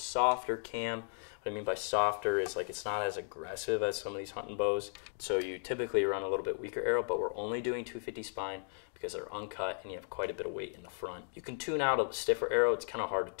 cam. What I mean by softer is like it's not as aggressive as some of these hunting bows. So you typically run a little bit weaker arrow, but we're only doing 250 spine because they're uncut and you have quite a bit of weight in the front. You can tune out a stiffer arrow. It's kind of hard to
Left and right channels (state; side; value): silent; right; digital silence